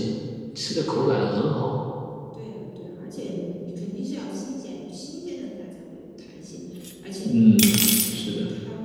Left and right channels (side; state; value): both; identical; correlation 1.00